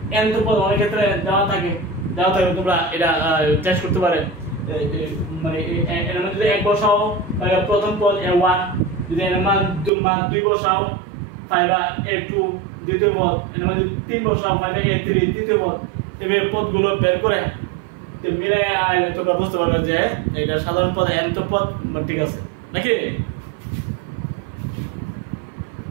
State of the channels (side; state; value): left; drops out; at 9.9 s